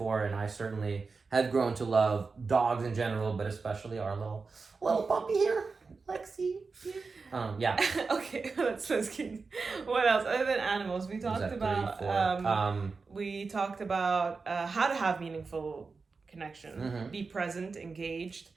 and I certainly have grown to love dogs in general, but especially our little puppy here, Lexi. Okay, let's keep. What else other than animals? We talked about how to have meaningful connection, be present, engaged,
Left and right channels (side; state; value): left; quieter; 4.4 dB